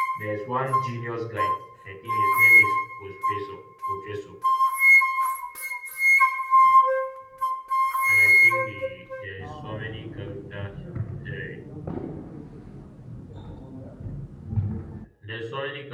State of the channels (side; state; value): both; identical; correlation 1.00